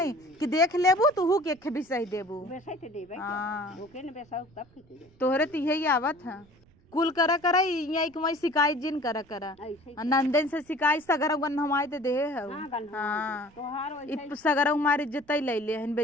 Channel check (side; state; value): right; noise; rumble, 29 dB below the sound